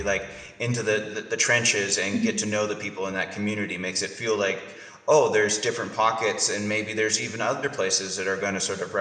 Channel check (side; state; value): both; identical; correlation 1.00